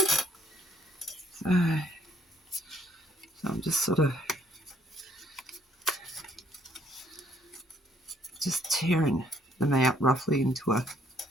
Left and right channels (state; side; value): normal; both; correlation 0.65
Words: So I'm just sort of just tearing them out roughly into a,